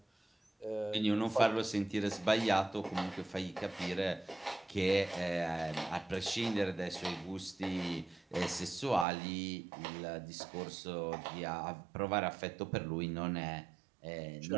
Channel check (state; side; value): drops out; left; at 9.1 s